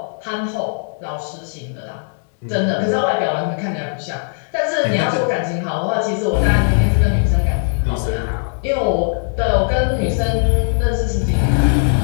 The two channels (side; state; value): right; silent; 67 dB below the other